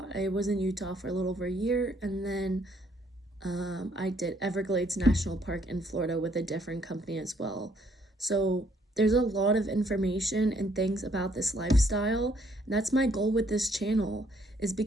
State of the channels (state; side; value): normal; both; correlation 0.66